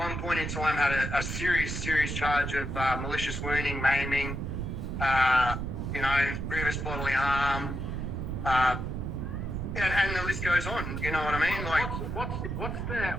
point in time, had a serious charge of malicious wounding, maiming, grievous bodily harm, and the list goes on. You know what I mean? Like,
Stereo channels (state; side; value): noise; right; rumble, 4 dB below the sound